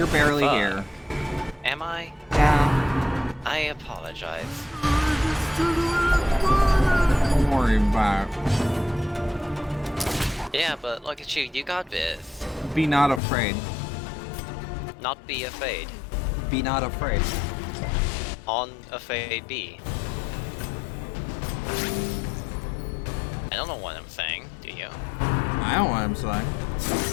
barely Fuck. here. Am I? Yeah. I apologize. Don't worry about it. Yeah, but look at you, you got this. Be not afraid. Not be afraid. Be not afraid. On afraid be. I don't know what I'm saying, do you? I don't know what I'm saying.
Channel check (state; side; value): drops out; right; at 13.2 s